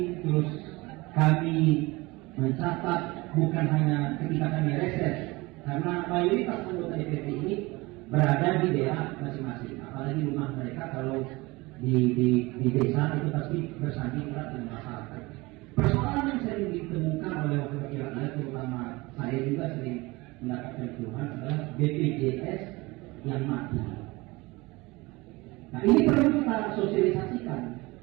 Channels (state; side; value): quieter; left; 22.7 dB